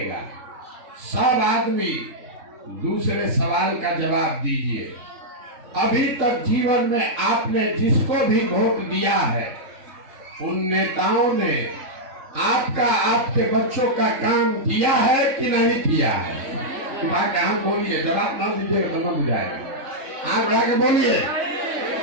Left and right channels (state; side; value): late; left; 3.8 ms